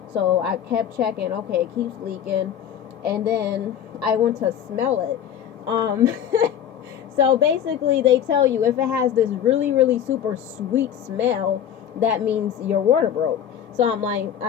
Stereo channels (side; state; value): right; quieter; 9.5 dB